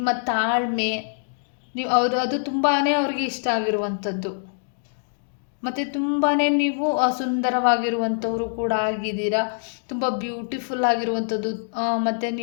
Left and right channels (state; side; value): silent; right; digital silence